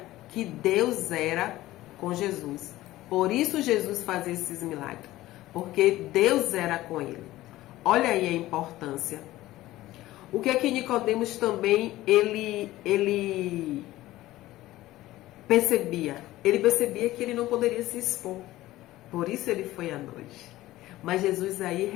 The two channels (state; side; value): quieter; right; 16.4 dB